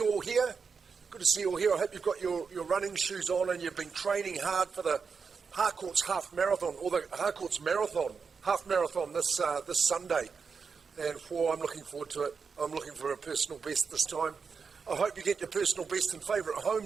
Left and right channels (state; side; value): quieter; left; 5.5 dB